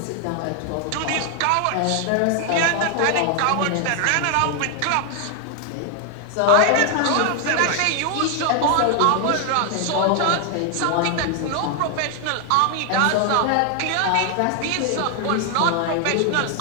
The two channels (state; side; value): different; both; correlation 0.00